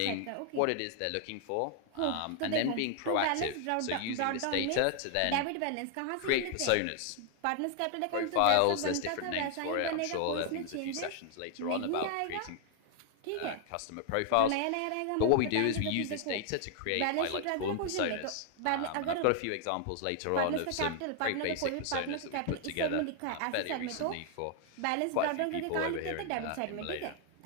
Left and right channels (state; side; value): different; both; correlation 0.00